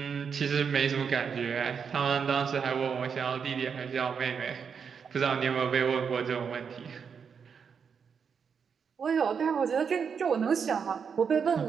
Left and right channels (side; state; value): left; quieter; 6.5 dB